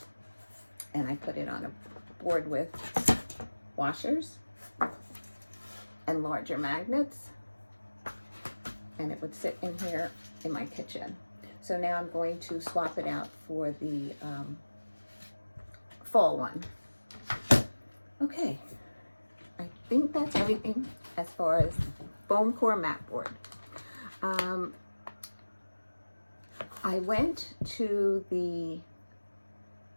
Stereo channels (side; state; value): both; inverted; correlation -1.00